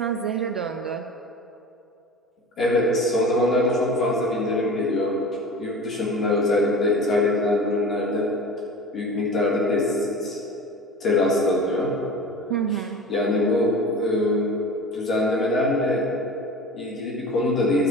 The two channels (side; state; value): both; normal; correlation 0.36